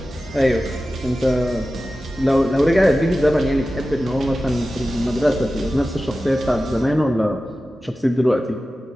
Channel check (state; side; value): normal; both; correlation 0.94